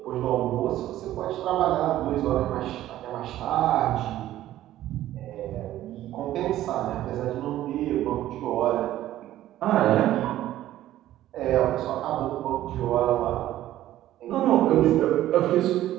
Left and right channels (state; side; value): quieter; left; 13.7 dB